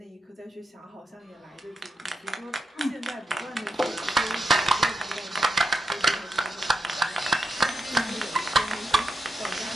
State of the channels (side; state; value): both; normal; correlation 0.84